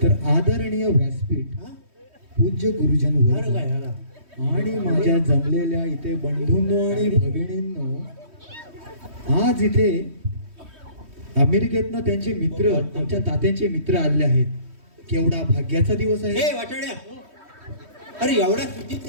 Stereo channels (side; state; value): left; late; 3.1 ms